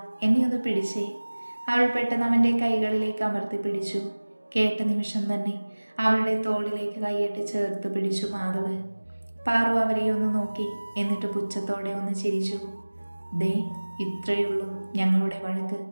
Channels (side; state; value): both; inverted; correlation -1.00